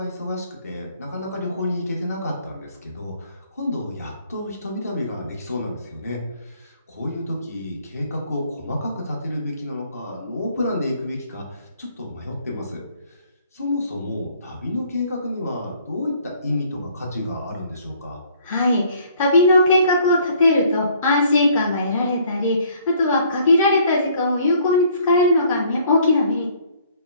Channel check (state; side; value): inverted; both; correlation -0.61